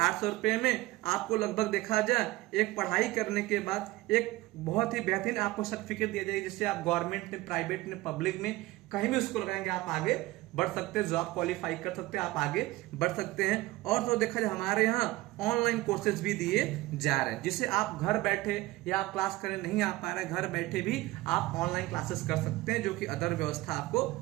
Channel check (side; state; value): left; quieter; 19.0 dB